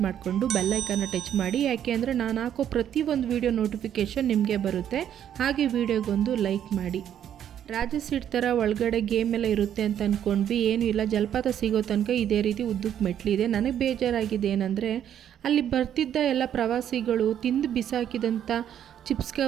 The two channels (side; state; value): left; quieter; 9.9 dB